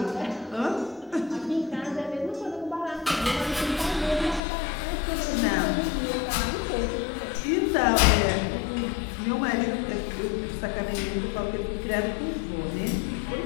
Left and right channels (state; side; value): drops out; right; at 4.4 s